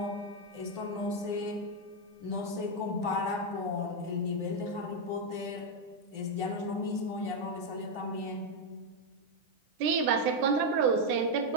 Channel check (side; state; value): left; late; 9.9 ms